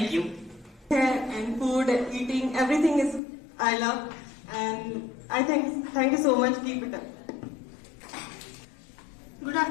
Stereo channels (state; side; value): drops out; right; at 3.2 s